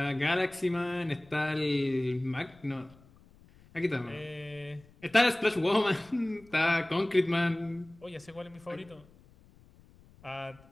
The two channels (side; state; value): left; noise; rumble, 26 dB below the sound